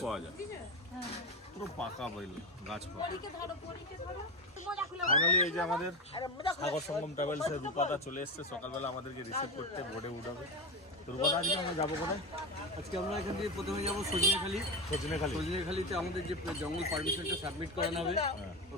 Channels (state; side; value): normal; both; correlation 0.18